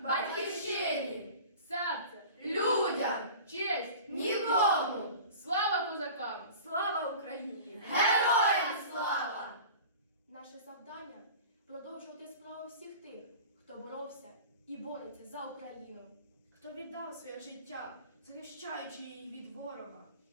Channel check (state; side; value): inverted; both; correlation -0.38